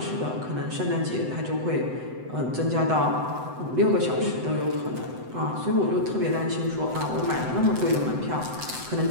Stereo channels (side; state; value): left; late; 7.9 ms